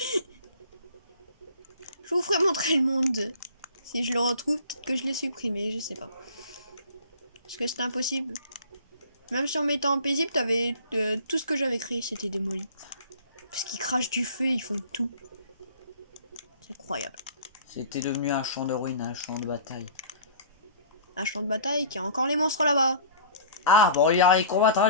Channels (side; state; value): both; inverted; correlation -0.45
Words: Je vous ferai montrer le monde. Si je le retrouve, peut-être que je l'ai supprimé, je sais pas. Parce que c'était impossible. Même si on mettait en paisible, t'avais tout ce que j'avais créé, c'était démoli. Parce qu'ils crachent du feu, ils font tout. C'est incroyable. C'était devenu un champ de ruines, un champ de bataille. Un champ de bataille qui a encore les monstres là-bas. Ah, bon, il y a les